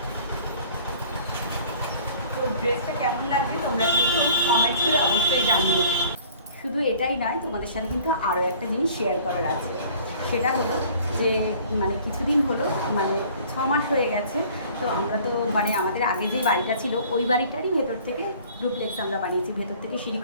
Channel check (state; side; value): inverted; both; correlation -0.51